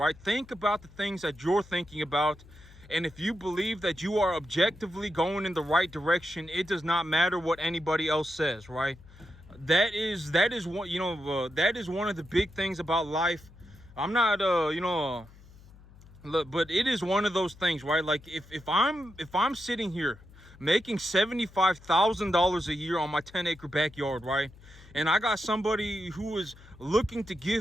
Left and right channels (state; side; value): noise; left; hum, 22 dB below the sound